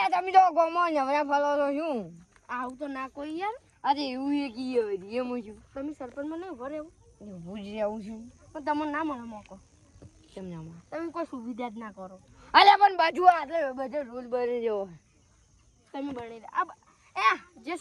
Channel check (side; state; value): both; identical; correlation 1.00